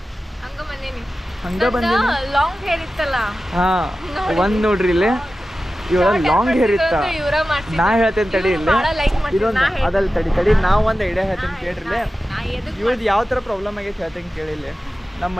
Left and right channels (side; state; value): both; normal; correlation 0.94